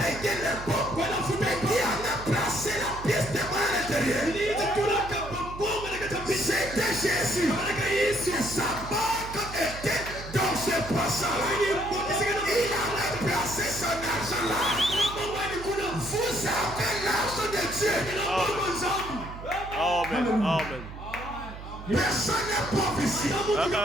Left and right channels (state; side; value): noise; right; hum, 12 dB below the sound